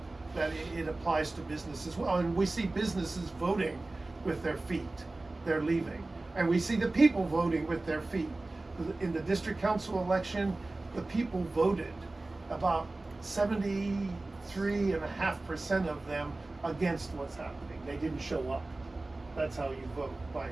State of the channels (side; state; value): left; quieter; 3.0 dB